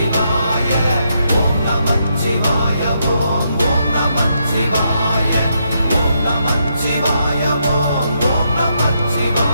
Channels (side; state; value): both; inverted; correlation -0.78